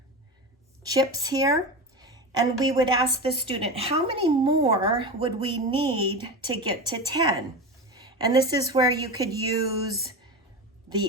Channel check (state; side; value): normal; both; correlation 0.24